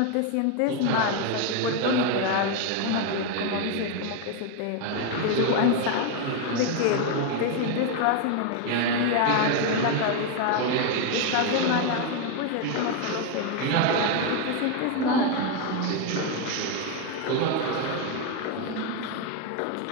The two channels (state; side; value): different; both; correlation 0.01